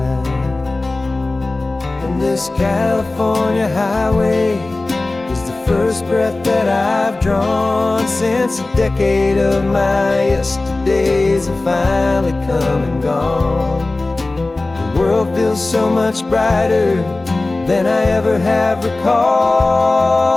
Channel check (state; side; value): quieter; right; 3.1 dB